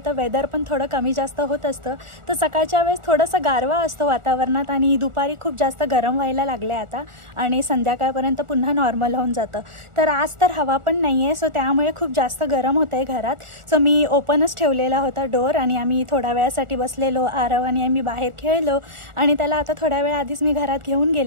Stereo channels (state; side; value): late; left; 1.4 ms